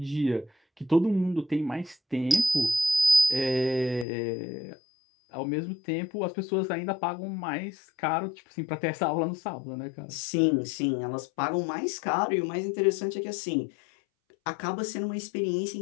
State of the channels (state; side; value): drops out; right; at 4.0 s